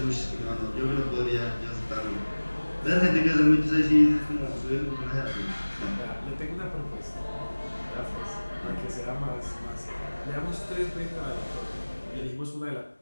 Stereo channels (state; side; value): inverted; both; correlation -1.00